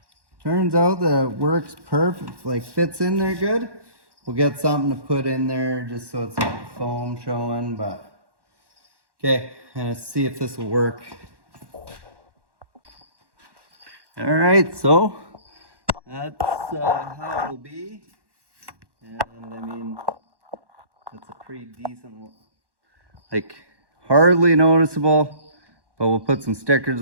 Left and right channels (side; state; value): left; late; 1.1 ms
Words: turns out that it works perfect, like fits in there good, we'll get something to put in there just so it's like foam showing. But okay, and see if this will work. All right, so that's how it'll be. And I mean, that's a pretty decent, like hardly noticeable, but we'll put some